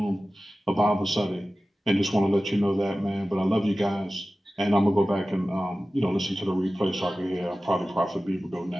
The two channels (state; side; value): normal; both; correlation 0.96